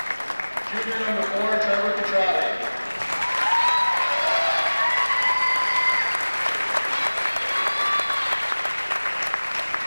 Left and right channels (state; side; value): inverted; both; correlation -1.00